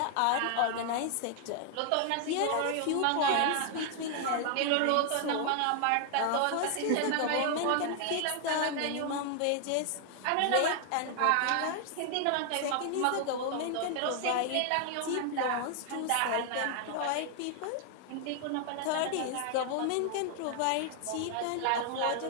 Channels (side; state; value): both; different; correlation 0.00